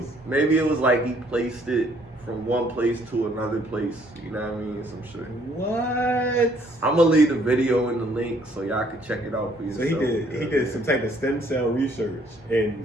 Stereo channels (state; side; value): normal; both; correlation 0.64